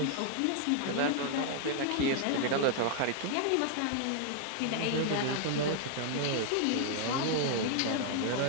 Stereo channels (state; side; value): different; both; correlation 0.00